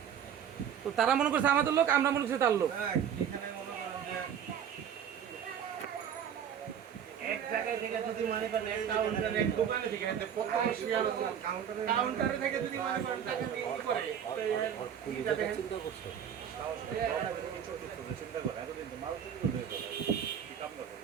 তো তারা মনে করছে আমাদের লোক, আমরা মনে করছি তার লোক। এক জায়গায় থেকে যদি মনে করেন এক কাউন্টারে এক দোকানে থেকে প্রথম কাউন্টারে থেকে যদি মনে করেন টাকা দিয়ে কি করে চিন্তা করছে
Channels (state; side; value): quieter; left; 8.6 dB